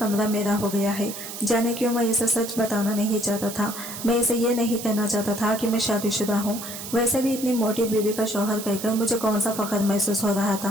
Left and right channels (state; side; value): noise; right; hiss, 9 dB below the sound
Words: मेरा हो गया है। जाने क्यों मैं इसे सच बताना नहीं चाहता था। मैं इसे ये नहीं कहना चाहता था कि मैं शादीशुदा हूँ। वैसे भी इतनी मोटी बीवी का शौहर कहकर मुझे कौन सा फख्र महसूस हो रहा